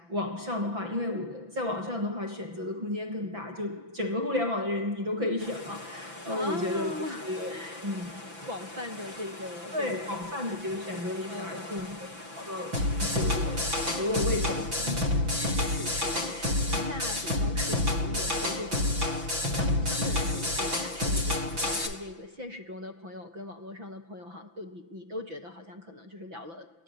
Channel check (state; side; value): late; left; 6.0 ms